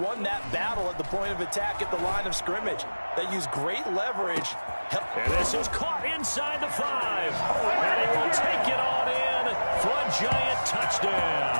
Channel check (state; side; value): inverted; both; correlation -1.00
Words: that battle at the point of attack at the line of scrimmage. They used great leverage. And this is caught inside the 5. And he will take it on in for a Giant touchdown.